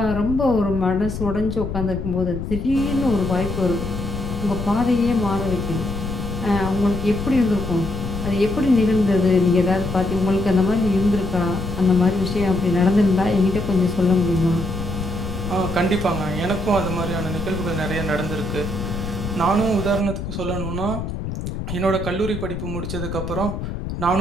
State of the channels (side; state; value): left; noise; rumble, 6 dB below the sound